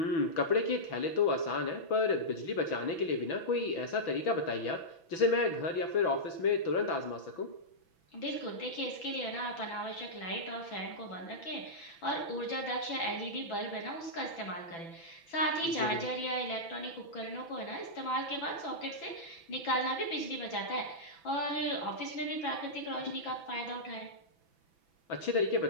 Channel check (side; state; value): right; late; 6.0 ms